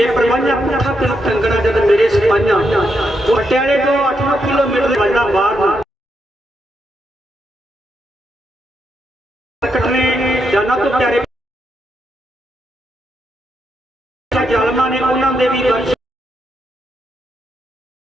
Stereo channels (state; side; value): normal; both; correlation 0.81